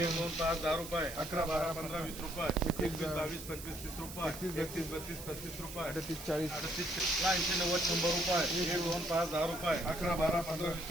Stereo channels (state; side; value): noise; right; hiss, 12 dB below the sound